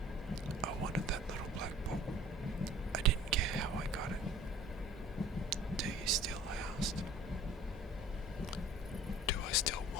I wanted that little black book. I didn't care how I got it. Do you still? I asked. Do I still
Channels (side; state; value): both; normal; correlation 0.48